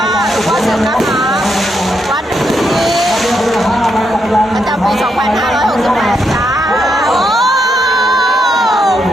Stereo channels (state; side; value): normal; both; correlation 0.80